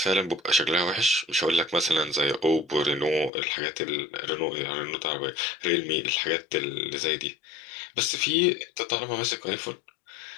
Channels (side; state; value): right; drops out; at 3.3 s